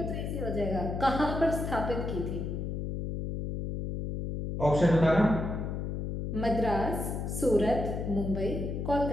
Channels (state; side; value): noise; left; hum, 4 dB below the sound